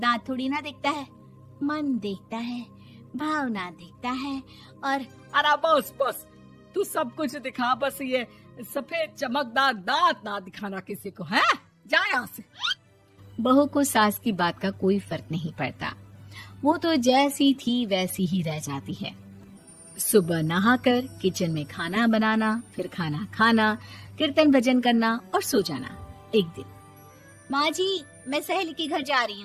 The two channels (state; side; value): identical; both; correlation 1.00